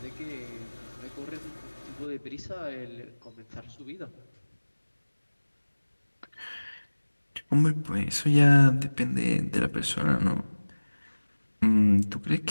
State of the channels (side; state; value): both; inverted; correlation -1.00